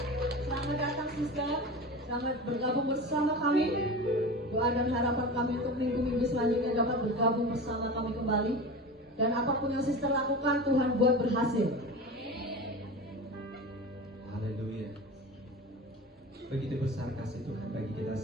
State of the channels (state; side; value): normal; both; correlation 0.30